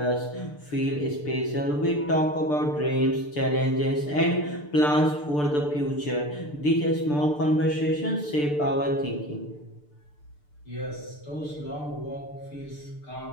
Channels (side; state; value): right; late; 6.8 ms